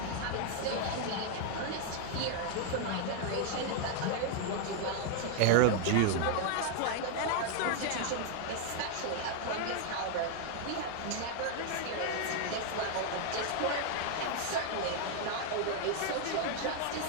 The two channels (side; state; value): both; different; correlation 0.00